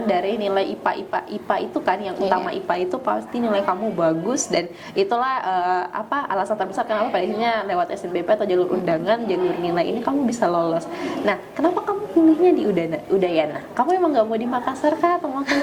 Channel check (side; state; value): both; identical; correlation 1.00